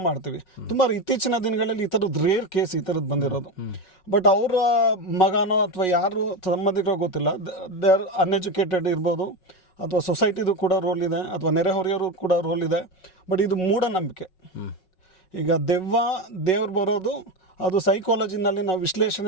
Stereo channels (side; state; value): right; late; 5.4 ms